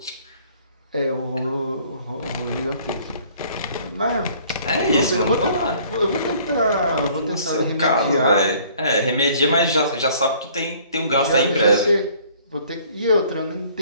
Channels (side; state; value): both; inverted; correlation -0.57